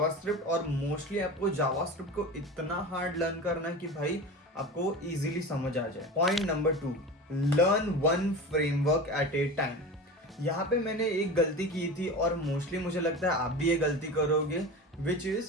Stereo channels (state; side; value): normal; both; correlation 0.30